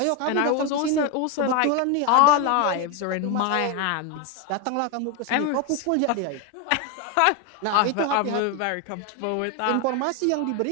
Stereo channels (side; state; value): both; different; correlation 0.02